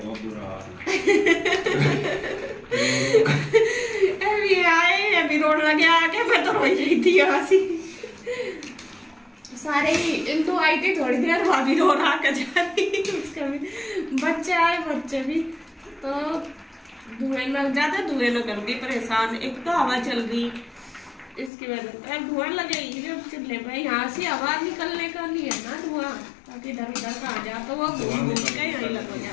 बुरा हाल। अभी आए अभी रोड लगे आके मैं तो रो रही थी हंसी। सारे ही तो आई थी थोड़ी देर, भाभी रो रहा कर जा रही, उसका भी बच्चे आए, बच्चे भी तो धुएं लग जाते, धुएं न कर दी परेशान। एक तो हवा चल रही इसकी वजह से धुआं लगेगी जब चूल्हे पे, यहाँ से हवा निकलने का लिए ना धुआं, ताकि इधर उधर का आ जाए तो वो घूम के यही लग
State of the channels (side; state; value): right; drops out; at 21.5 s